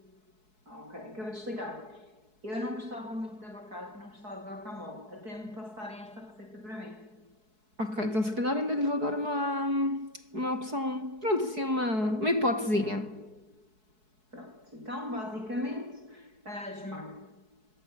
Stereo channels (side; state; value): left; late; 4.7 ms